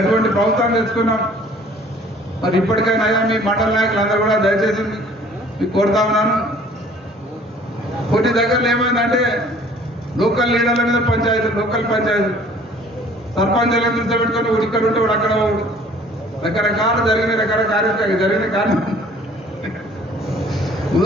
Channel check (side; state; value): both; normal; correlation 0.53